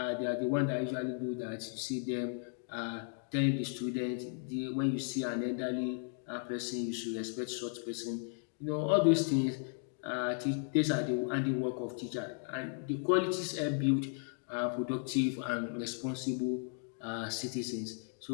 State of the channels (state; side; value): silent; right; 54 dB below the other